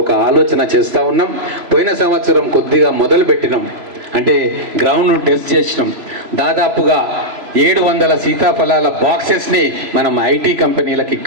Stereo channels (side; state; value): left; late; 3.0 ms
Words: ఒక ఆలోచన చేస్తూ ఉన్నాం. పోయిన సంవత్సరం కొద్దిగా మొదలు పెట్టినాం, అంటే గ్రౌండ్ను టెస్ట్ చేసినాం. దాదాపుగా 700 సీతాఫలాల బాక్సెస్ని మనం ఐటీ కంపెనీలకు